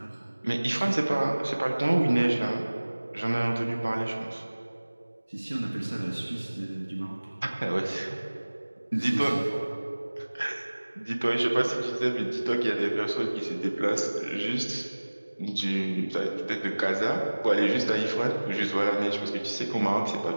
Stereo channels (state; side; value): inverted; both; correlation -1.00